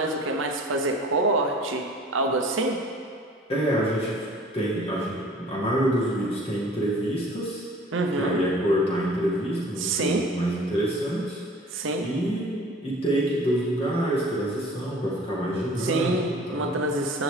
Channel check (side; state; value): both; normal; correlation 0.47